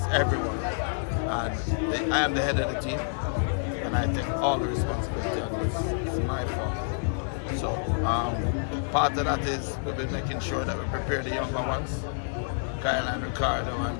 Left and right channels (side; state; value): right; silent; digital silence